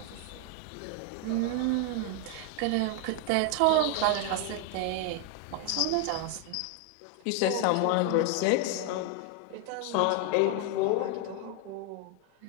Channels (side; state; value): both; different; correlation 0.01